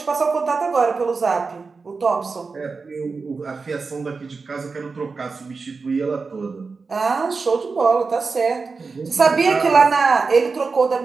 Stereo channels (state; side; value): quieter; left; 4.5 dB